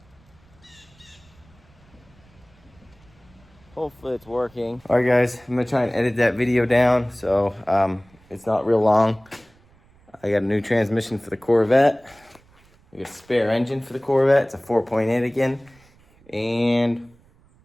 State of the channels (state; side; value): noise; right; rumble, 30 dB below the sound